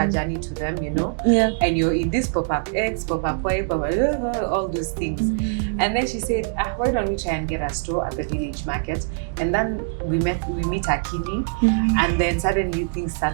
journey to them, you know. And you're in this pop-up X, pop-up Y, pop-up, all those things. And then she said, why don't we try and get a store at the village market? And then we meet Akili, and then suddenly things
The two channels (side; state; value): left; silent; digital silence